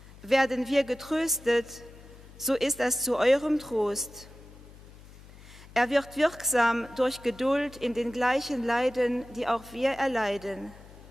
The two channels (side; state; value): left; noise; hum, 20 dB below the sound